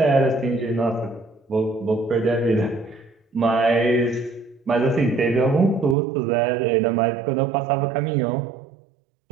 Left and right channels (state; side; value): drops out; left; at 6.0 s